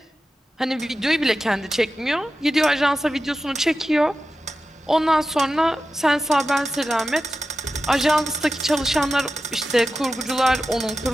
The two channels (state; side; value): normal; both; correlation 0.93